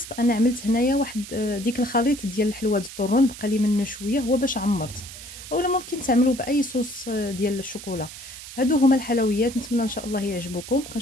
انا عملت هنايا واحد ديك الخليط ديال الحلوى الطرون، بقى لي منه شويه، هو باش عمرت. اولا ممكن تعملوا باي صوص ديال الشوكولا. هادو هما الحلويات، نتمنى ان شاء الله يعجبوكم.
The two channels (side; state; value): right; noise; hiss, 13 dB below the sound